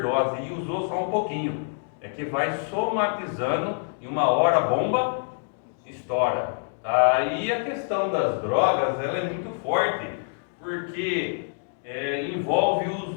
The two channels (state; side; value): silent; right; digital silence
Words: e usou só um pouquinho. É que vai somatizando e uma hora a bomba estoura. Aí a questão das drogas, ela é muito forte, porque envolve